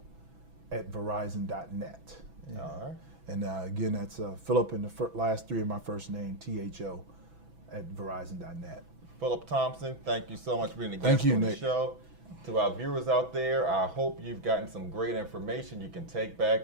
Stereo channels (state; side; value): late; left; 6.1 ms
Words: at Verizon.net. All right. And again, that's Phillip in the last three of my first name, THO, at Verizon.net. Phillip Thompson, thank you so much for being a Thank guest you, on the Nick. show. To our viewers out there, I hope you've gotten some great information you can take back